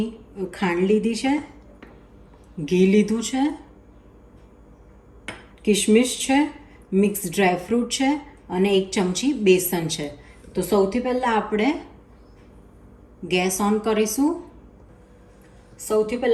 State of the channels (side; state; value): both; identical; correlation 1.00